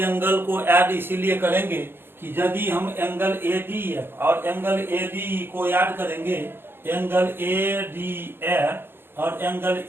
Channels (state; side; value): late; left; 0.10 ms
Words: को ऐड इसीलिए करेंगे कि यदि हम एंगल ADF और एंगल ADE को ऐड करेंगे, एंगल ADF और एंगल